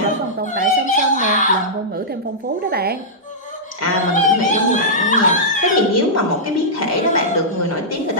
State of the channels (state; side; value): normal; both; correlation -0.12